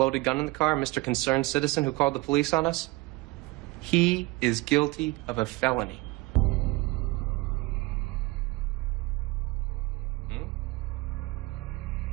gun in the car, Mr. Concerned Citizen who called the police on us, He is guilty of a felony.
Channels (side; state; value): left; quieter; 22.1 dB